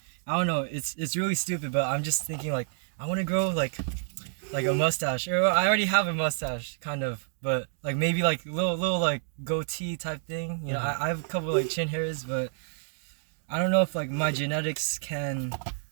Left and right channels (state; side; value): silent; left; digital silence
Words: I don't know, it's really stupid, but I'm just thinking like I want to grow like a mustache, or I already have a mustache kind of, but like maybe like little like goatee type thing. You know, I have a couple like chin hairs, but I don't know if like my genetics can